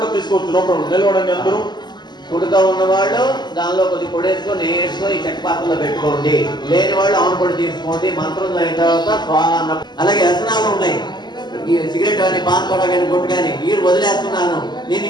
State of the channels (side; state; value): right; late; 0.21 ms